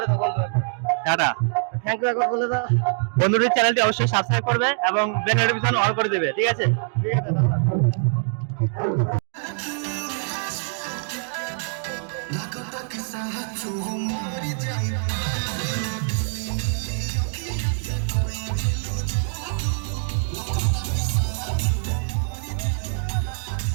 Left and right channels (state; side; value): silent; left; digital silence